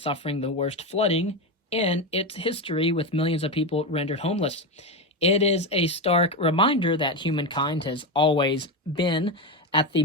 suffering the worst flooding in its history, with millions of people rendered homeless. It is a stark reminder that humankind has always been at the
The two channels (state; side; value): normal; both; correlation 0.14